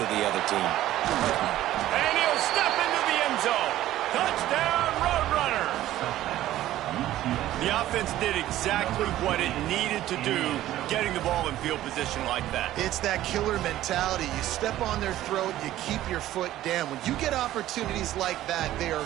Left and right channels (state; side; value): quieter; left; 14.0 dB